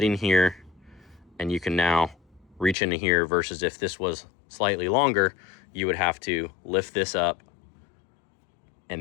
here and you can now reach into here, versus if this was slightly longer, you would have to lift this up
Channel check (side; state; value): right; drops out; at 2.8 s